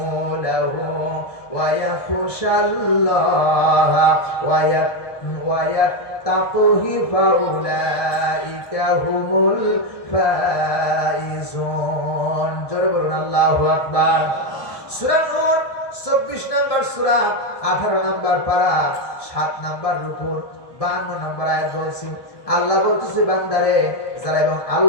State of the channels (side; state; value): right; late; 1.2 ms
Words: ওয়া ইয়াখশাল্লাহা ওয়া ইয়াত্তাকুহু ফাউলাইকা হুমুল ফাইজুন। জোরে বলুন আল্লাহু আকবার। সূরা নূর 24 নম্বর সূরা, 18 নম্বর পারা, 7 নম্বর রুকু, 52 নম্বর আয়াত বলছি। আল্লাহ বলতেছে বান্দারে যারা এবং